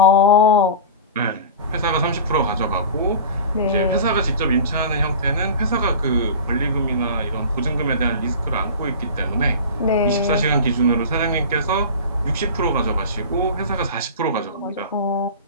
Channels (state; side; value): inverted; both; correlation -0.33